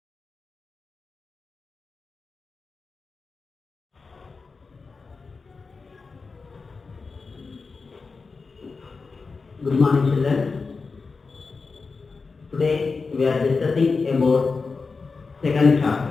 Good morning, children. Today we are discussing about second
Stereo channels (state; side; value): quieter; right; 4.4 dB